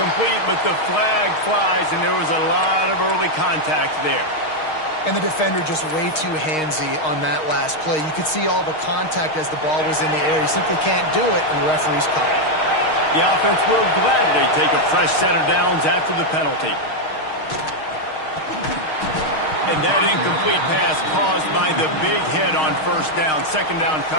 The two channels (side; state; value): right; late; 6.4 ms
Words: but the flag flies, and there was a lot of early contact there. And the defender just way too handsy on that last play. You could see all the contact as the ball was in the air. He simply can't do it, and the referee's caught it. The offense will gladly take a fresh set of downs after the penalty. And that incomplete pass caused by the big hit on 1st down. 2nd down